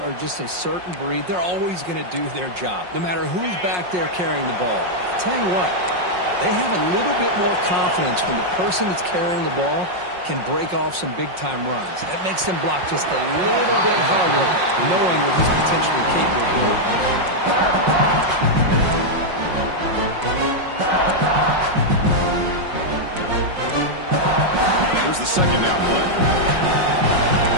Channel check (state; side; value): late; left; 5.5 ms